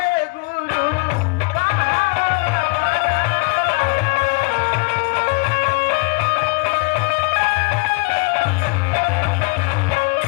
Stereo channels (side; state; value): right; quieter; 28.6 dB